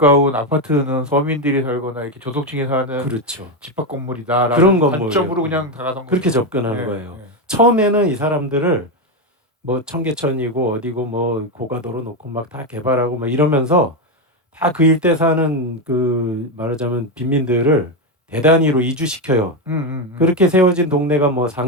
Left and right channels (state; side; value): normal; both; correlation 0.09